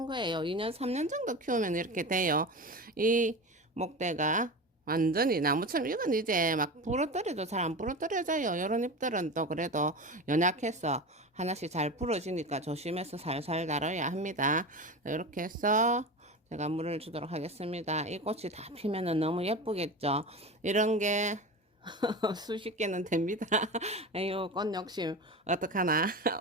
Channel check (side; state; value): both; normal; correlation 0.27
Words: 거예요. 2년 3년 정도 키우면 이렇게 돼요. 이 목대가 완전히 나무처럼 이건 이제 막 부러뜨려도 잘 안 부러뜨려져요. 이런 잎들은 또 그래도 연약해서 하나씩 잘 부러지니까 조심해서 살살 다뤄야 합니다. 이렇게 해서 제가 물을 주도록 하겠습니다. 이 꽃이 다 피면은 너무 예쁘겠죠. 이런 게 수십 개는 됩니다. 아유, 꽃 욕심 어떡하나.